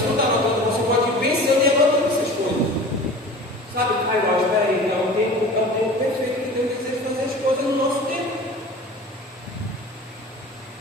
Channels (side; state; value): both; normal; correlation 0.39